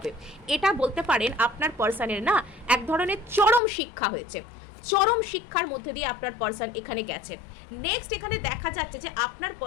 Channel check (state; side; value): drops out; right; at 3.6 s